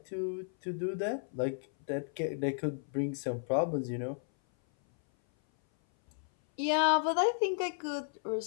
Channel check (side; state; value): right; silent; 55 dB below the other